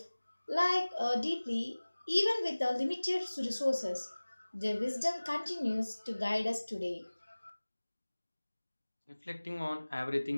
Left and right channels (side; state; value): both; inverted; correlation -1.00